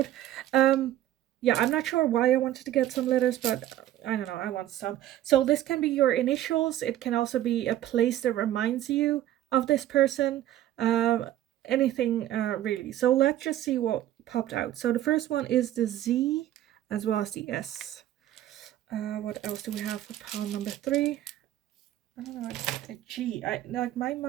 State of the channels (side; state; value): left; quieter; 13.0 dB